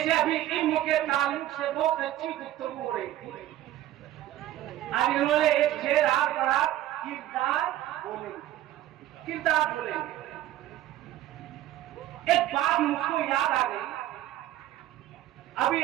अभी इल्म के ताल्लुक से बहुत अच्छी गुफ्तगू हो रही थी। अब इन्होंने एक शेर आप पढ़ा किरदार बोलेंगे, किरदार बोलेंगे। एक बात मुझको याद आ गई। अभी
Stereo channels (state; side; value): quieter; left; 13.8 dB